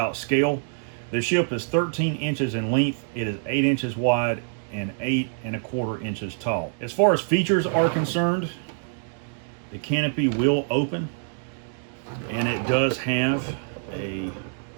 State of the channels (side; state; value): left; silent; digital silence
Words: scale. The ship is 13 inches in length. It is 8 inches wide and 8 1/4 inches tall. As far as features are concerned, the canopy will open, and it does have a